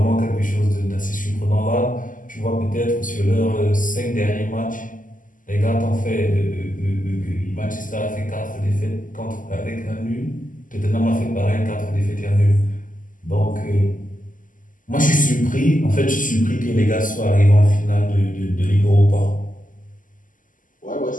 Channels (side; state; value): right; late; 0.38 ms